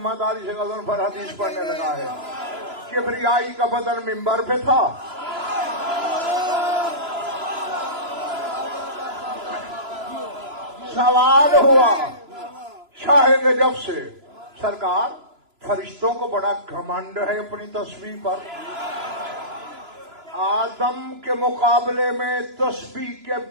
से गज़नफ़र हदीस पढ़ने लगा है। किबरियाई का बदन मिंबर पे था, सवाल हुआ शाह नजफ से, सरकार फरिश्तों को बड़ा घमंड है अपनी तस्बीह पर, आदम के मुकाबले में तस्बीह के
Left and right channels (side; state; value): left; late; 3.0 ms